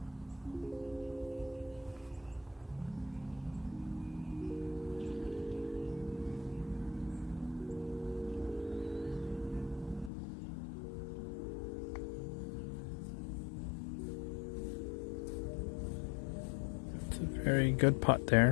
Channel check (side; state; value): right; drops out; at 10.1 s